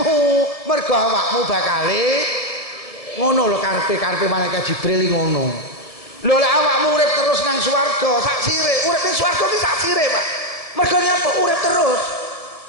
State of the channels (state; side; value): late; right; 1.6 ms